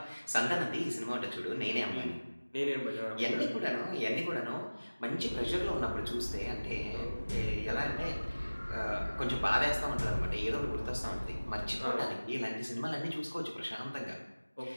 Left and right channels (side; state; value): both; inverted; correlation -1.00